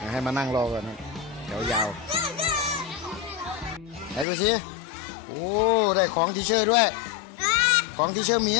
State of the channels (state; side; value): drops out; right; at 4.2 s